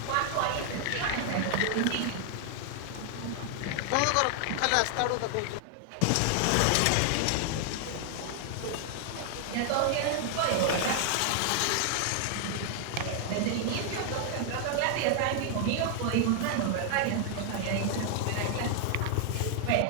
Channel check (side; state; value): both; different; correlation 0.00